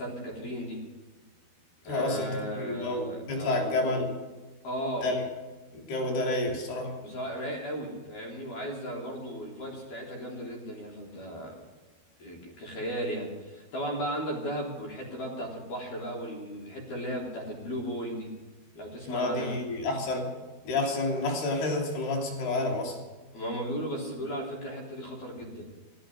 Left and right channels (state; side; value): late; right; 12 ms